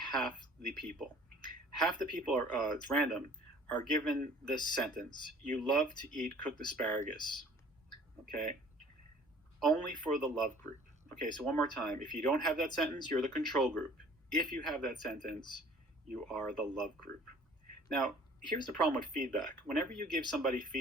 the people. Half the people are, it's random, are given this sentence: "You love to eat cooked asparagus." Okay? Only for the love group. Okay, so one more time. If you don't have that sentence, you're the control group. If you have that sentence, you are the love group. Now, here's the problem with feedback. Whenever you give somebody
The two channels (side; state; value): both; normal; correlation 0.51